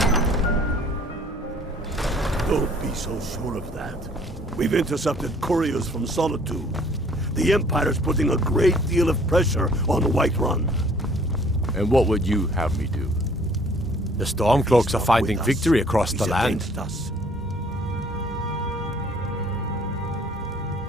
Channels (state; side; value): normal; both; correlation 0.57